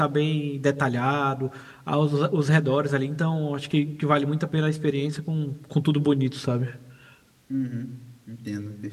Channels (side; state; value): both; identical; correlation 1.00